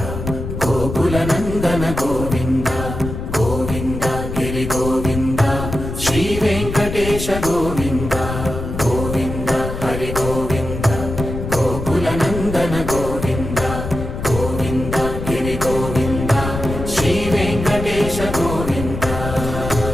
గోకుల నందన గోవింద గోవింద గిరి గోవింద శ్రీ వెంకటేశ గోవింద గోవింద హరి గోవింద గోకుల నందన గోవింద గోవింద గిరి గోవింద శ్రీ వెంకటేశ గోవింద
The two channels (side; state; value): left; noise; rumble, 6 dB below the sound